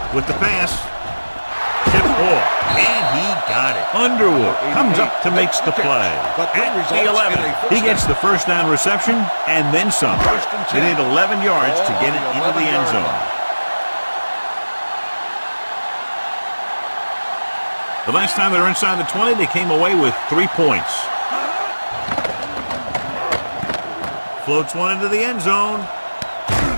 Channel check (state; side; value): inverted; both; correlation -1.00